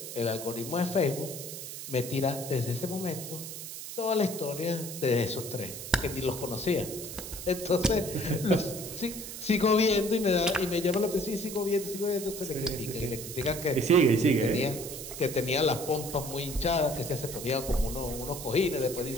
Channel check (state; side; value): noise; right; hiss, 9 dB below the sound